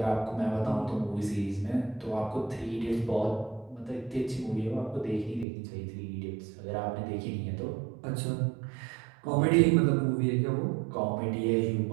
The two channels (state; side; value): drops out; left; at 5.5 s